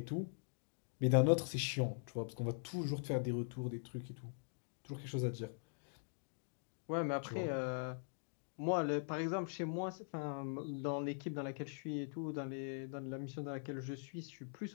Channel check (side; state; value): right; silent; digital silence